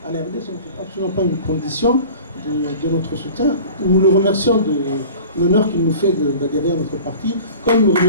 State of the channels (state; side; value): inverted; both; correlation -0.41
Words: à l'ARD, ce n'est absolument pas une condition de notre soutien. Nous le remercions de l'honneur qu'il nous fait d'adhérer à notre parti, comme nous